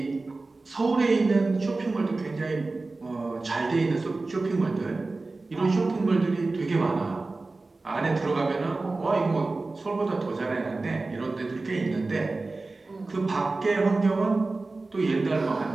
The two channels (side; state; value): left; quieter; 3.4 dB